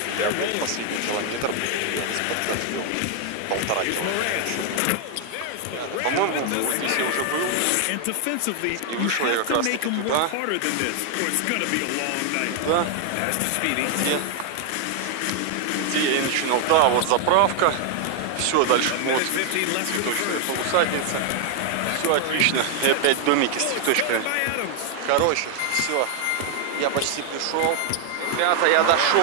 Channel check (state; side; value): different; both; correlation 0.00